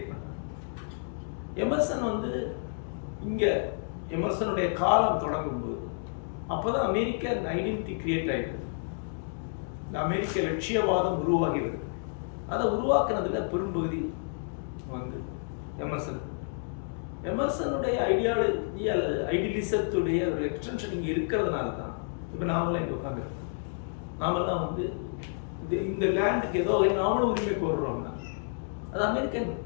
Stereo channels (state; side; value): silent; right; digital silence